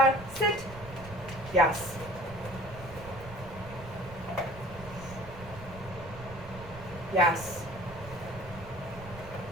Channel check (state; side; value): noise; right; rumble, 14 dB below the sound